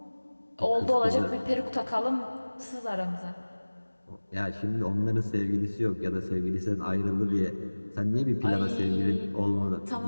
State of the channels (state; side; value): inverted; both; correlation -1.00